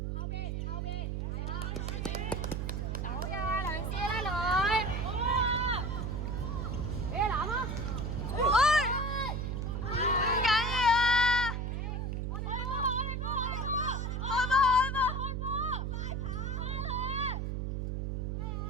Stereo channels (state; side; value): noise; right; hum, 2 dB below the sound